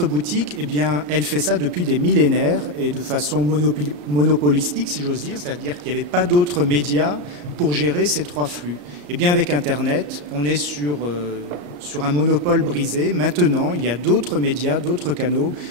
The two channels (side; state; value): left; late; 34 ms